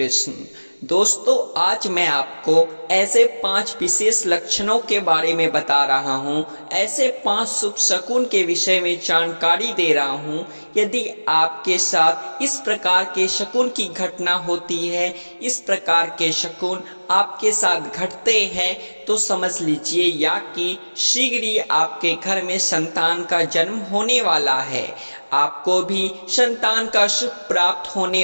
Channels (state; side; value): inverted; both; correlation -1.00